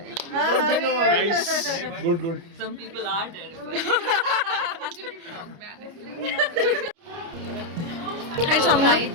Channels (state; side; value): late; left; 29 ms